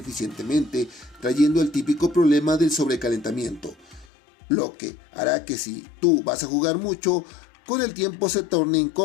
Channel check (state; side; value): drops out; right; at 4.0 s